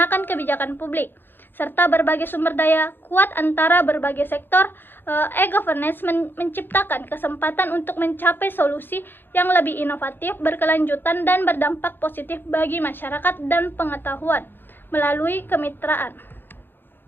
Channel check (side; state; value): right; late; 0.099 ms